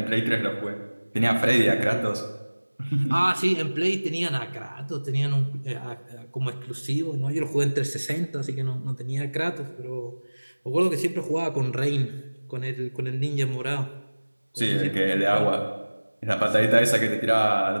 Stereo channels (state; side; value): inverted; both; correlation -1.00